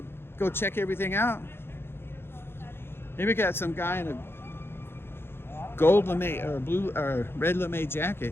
check everything out. Maybe we got some guy in a gold lame or blue or red lame jacket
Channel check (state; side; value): late; right; 0.11 ms